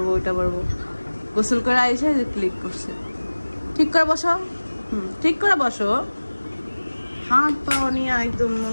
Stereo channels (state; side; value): inverted; both; correlation -1.00